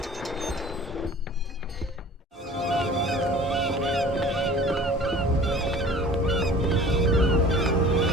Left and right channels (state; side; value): normal; both; correlation 0.45